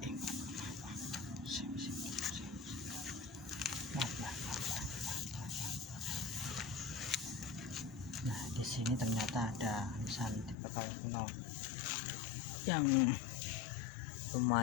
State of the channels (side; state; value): right; drops out; at 10.6 s